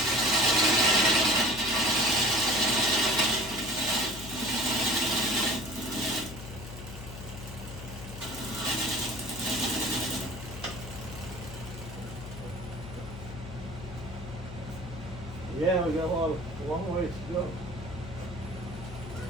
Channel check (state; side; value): noise; left; hum, 11 dB below the sound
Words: Yeah, we got a long ways to go.